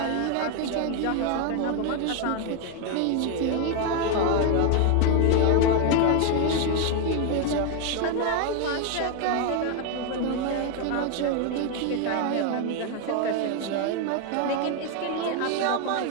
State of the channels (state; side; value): different; both; correlation 0.01